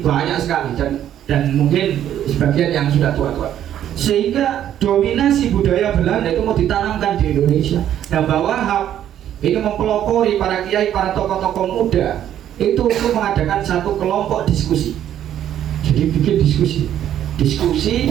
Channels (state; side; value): quieter; left; 10.9 dB